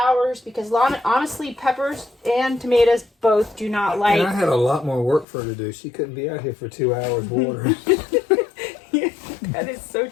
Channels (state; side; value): drops out; right; at 5.2 s